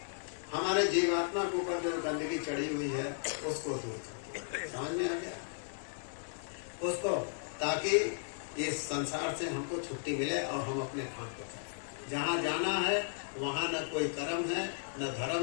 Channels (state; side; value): silent; right; digital silence